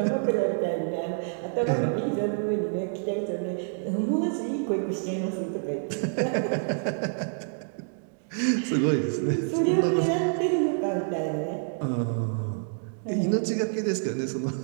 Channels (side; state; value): left; silent; 60 dB below the other